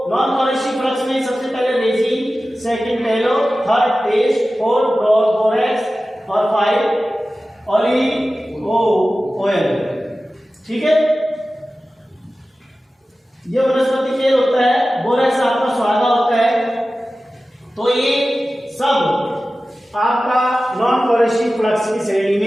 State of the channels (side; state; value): both; normal; correlation 0.95